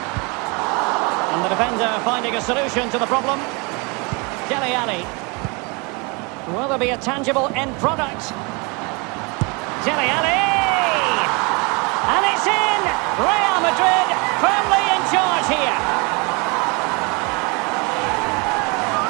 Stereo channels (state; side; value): quieter; left; 29.8 dB